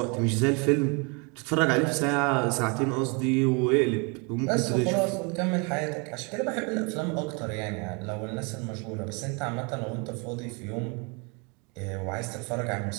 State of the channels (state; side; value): quieter; left; 32.0 dB